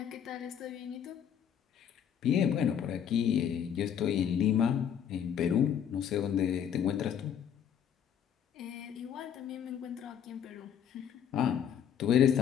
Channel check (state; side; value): quieter; right; 8.6 dB